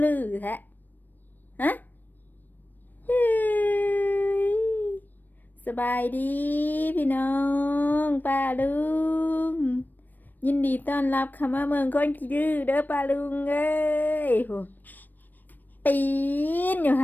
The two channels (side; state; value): right; late; 0.089 ms